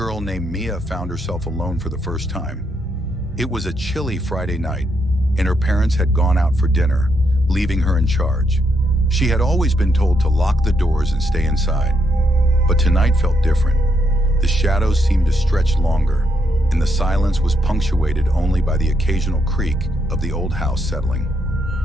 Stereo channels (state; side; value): normal; both; correlation 0.78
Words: named Mia found herself alone for the first time. It was a chilly Friday night, and her parents had gone out for dinner, leaving her in charge. She had always been told to lock the doors and stay inside, but tonight felt different. The shadows seemed to stretch longer, and the silence was punctuated only by the occasional creak of the old house settling.